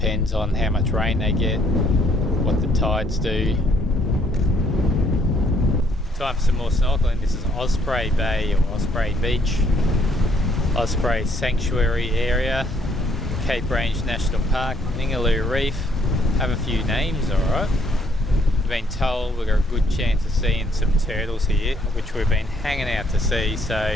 on how much rain they get, what the tides do. Time for some more snorkeling. This is Osprey Bay or Osprey Beach, Osprey Sanctuary Area, Cape Range National Park, Ningaloo Reef. Have a few names, alright. We've been told we've got a good chance of seeing some turtles here, which we've been hanging out to see,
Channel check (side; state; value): both; normal; correlation 0.67